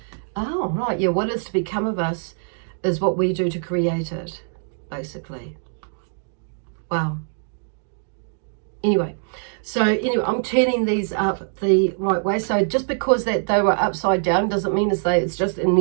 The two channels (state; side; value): silent; left; digital silence